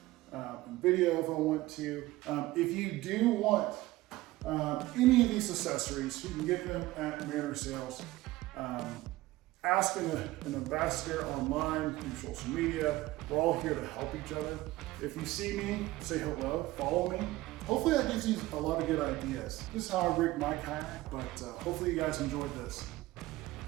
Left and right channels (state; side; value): quieter; left; 17.8 dB